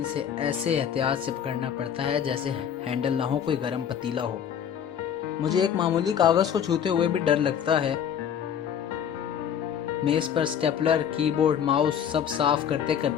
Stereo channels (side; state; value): right; quieter; 8.6 dB